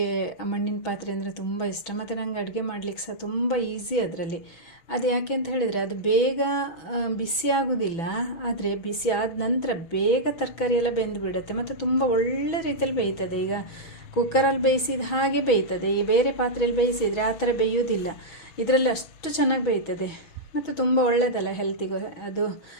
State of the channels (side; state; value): right; late; 6.1 ms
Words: ಮಣ್ಣಿನ ಪಾತ್ರೆ ಅಂದರೆ ತುಂಬ ಇಷ್ಟ, ಮತ್ತು ನನಗೆ ಅಡುಗೆ ಮಾಡಲಿಕ್ಕೆ ಸಹ ತುಂಬ ಈಸಿ ಅದರಲ್ಲಿ. ಅದು ಯಾಕೆ ಅಂತ ಹೇಳಿದರೆ, ಅದು ಬೇಗ ಬಿಸಿ ಆಗೋದಿಲ್ಲ, ಆದರೆ ಬಿಸಿ ಆದ ನಂತರ ಬೇಗ ತರಕಾರಿ ಎಲ್ಲ ಬೆಂದು ಬಿಡುತ್ತೆ, ಮತ್ತು ತುಂಬ ಒಳ್ಳೆ ರೀತಿಯಲ್ಲಿ ಬೇಯ್ತದೆ. ಈಗ ಕುಕ್ಕರಲ್ಲಿ ಬೇಯಿಸಿದ ಹಾಗೆ ಬೇಯ್ತದೆ. ಈ ಬೇರೆ ಪಾತ್ರೆಯಲ್ಲಿ ಬೇಯಿಸಿದರೆ ಆ ಥರ ಬೇಯೋದಿಲ್ಲ. ಇದರಲ್ಲಿ ಅಷ್ಟು ಚೆನ್ನಾಗಿ ಬೇಯ್ತದೆ, ಮತ್ತು ತುಂಬ ಒಳ್ಳೆಯದಲ್ಲ ಹೆಲ್ತಿಗೂ ಅದು.